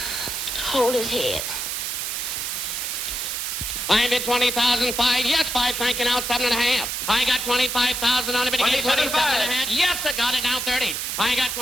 Hold his head. I bid 20,005. Yes, 5. Thank you. Now 7.5. I got 25,000 on it. But give 27.5. Yes, I got it. Now 30. I got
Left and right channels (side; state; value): right; noise; hiss, 3 dB below the sound